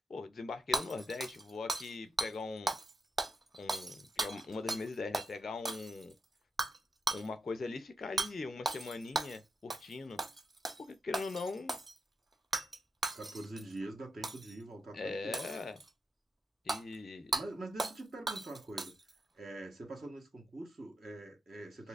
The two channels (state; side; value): normal; both; correlation 0.83